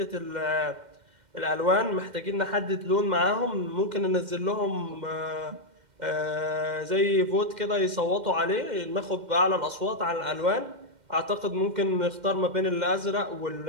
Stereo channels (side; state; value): left; late; 2.1 ms